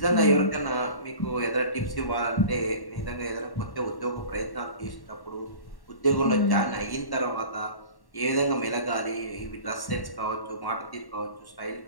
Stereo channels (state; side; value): late; right; 1.1 ms